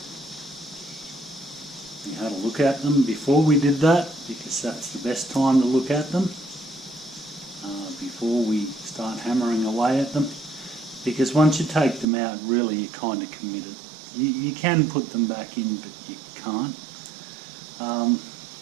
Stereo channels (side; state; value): left; drops out; at 12.1 s